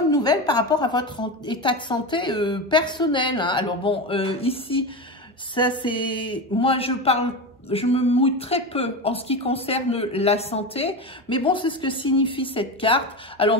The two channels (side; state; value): both; normal; correlation 0.21